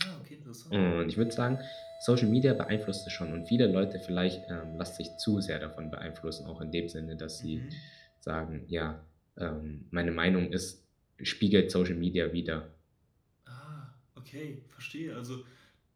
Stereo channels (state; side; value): identical; both; correlation 1.00